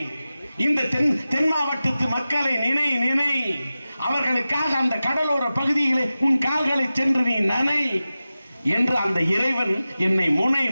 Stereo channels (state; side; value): inverted; both; correlation -0.95